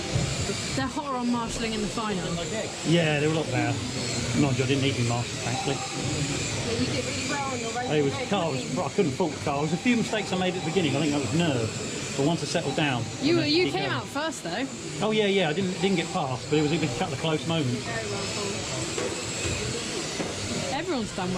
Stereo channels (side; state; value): both; identical; correlation 1.00